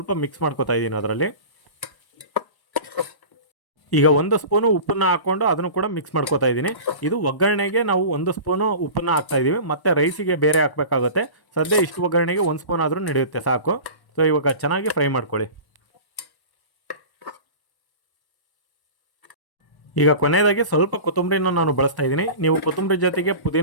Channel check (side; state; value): right; late; 1.1 ms